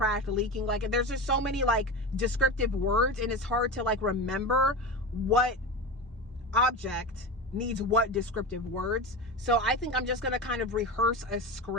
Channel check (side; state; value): both; normal; correlation 0.24